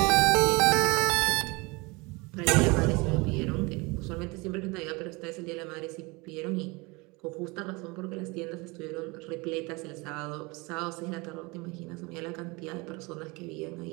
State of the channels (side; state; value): left; quieter; 26.0 dB